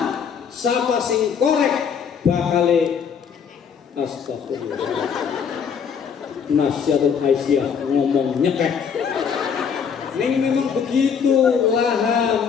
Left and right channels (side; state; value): right; quieter; 6.9 dB